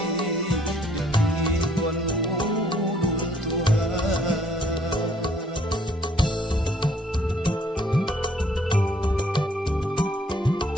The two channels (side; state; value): both; normal; correlation 0.63